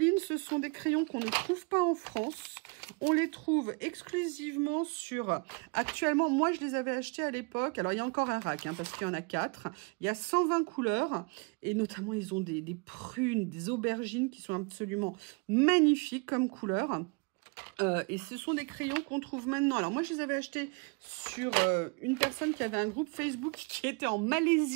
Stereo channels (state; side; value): quieter; left; 30.8 dB